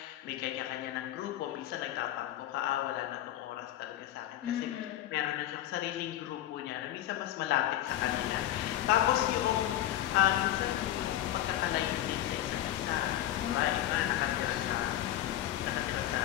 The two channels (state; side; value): quieter; right; 12.9 dB